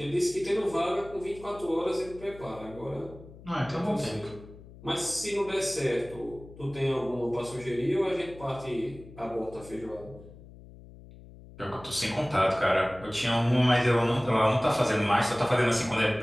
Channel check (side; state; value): left; noise; hum, 19 dB below the sound